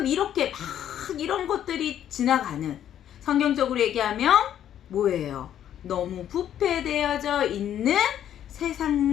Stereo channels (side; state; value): right; quieter; 10.5 dB